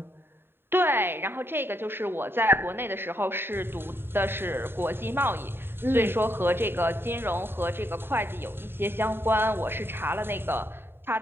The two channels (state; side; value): late; left; 0.11 ms